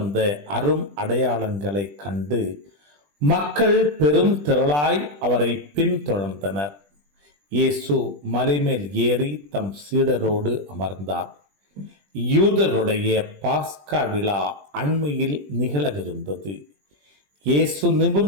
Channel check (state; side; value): late; left; 20 ms